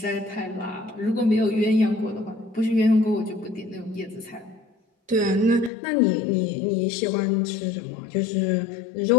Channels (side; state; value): right; drops out; at 5.7 s